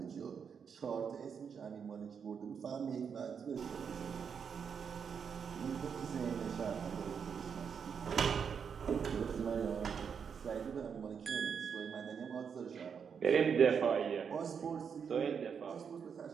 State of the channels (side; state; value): left; quieter; 6.8 dB